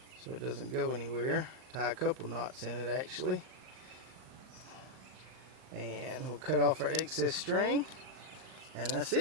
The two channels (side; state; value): left; late; 39 ms